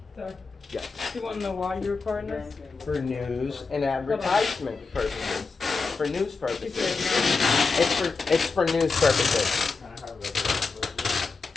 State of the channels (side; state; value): right; quieter; 4.4 dB